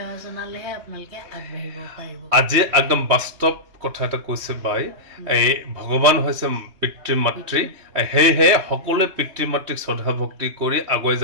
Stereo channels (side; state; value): left; late; 3.2 ms